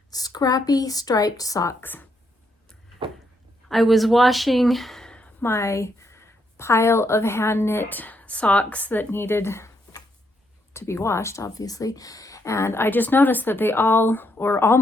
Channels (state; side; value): normal; both; correlation 0.76